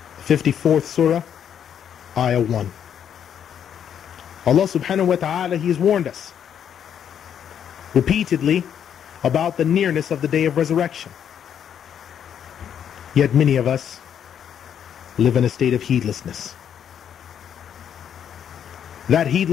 54th Surah, Ayah 1. Allah subhanahu wa ta'ala, He has warned us repeatedly about the nearness of the day of resurrection. Yet many of us live in a state of heedlessness. That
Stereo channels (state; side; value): quieter; right; 8.8 dB